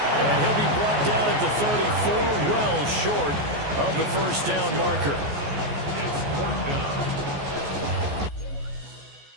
And he'll be brought down at the 34, well short of the first down marker.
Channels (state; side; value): late; left; 14 ms